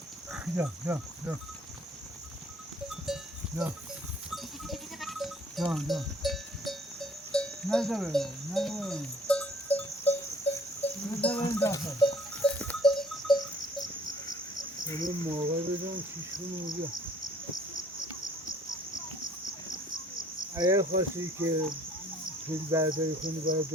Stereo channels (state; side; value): normal; both; correlation 0.57